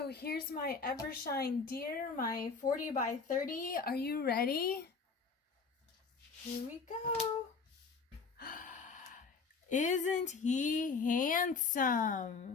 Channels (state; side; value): quieter; right; 4.9 dB